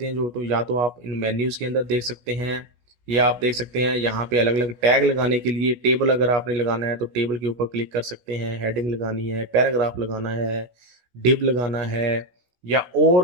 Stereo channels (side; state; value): left; late; 16 ms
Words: हैं, जो तो या तो आप इन मेन्यूज़ के अंदर देख सकते हैं, या आप देख सकते हैं यहाँ पे अलग अलग टैग लगाने के लिए। टेबल अगर आपने लगाना है तो टेबल के ऊपर क्लिक कर सकते हैं, हेडिंग लगानी है, पैराग्राफ लगाना है, डिव लगाना है, या